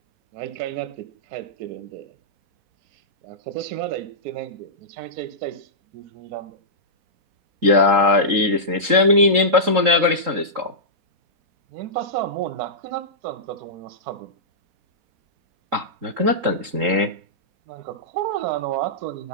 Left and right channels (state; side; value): late; left; 3.8 ms